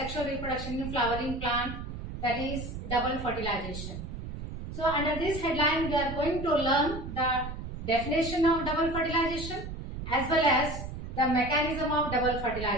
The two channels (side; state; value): right; noise; rumble, 8 dB below the sound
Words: reproduction in flowering plant, that is double fertilization. So under this headline we are going to learn the definition of double fertilization as well as the mechanism of double